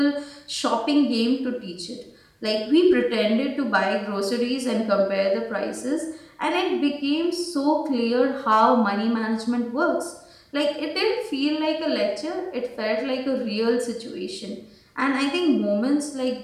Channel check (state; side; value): identical; both; correlation 1.00